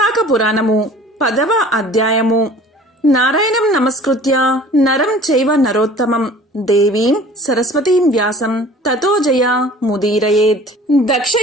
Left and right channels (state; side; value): normal; both; correlation 0.47